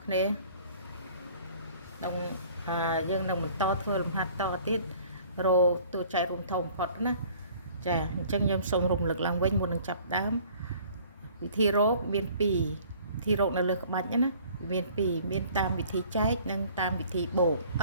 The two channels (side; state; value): both; inverted; correlation -0.52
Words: គ្នាក្នុងយើងនឹងបន្តធ្វើលំហាត់តទៀតរោតួចែករួមធំបំផុតណាចាអញ្ចឹងខ្ញុំសូមរំលឹកឡើងវិញមុននឹងចាប់ដើមវិធីរោមាន2វិធីរោនៅលើក្បាច់ណាមាន2មានតាមវិធីចែកនិងតាមវិធីបូក